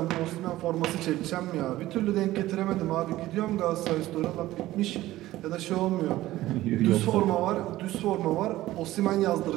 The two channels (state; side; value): quieter; left; 16.0 dB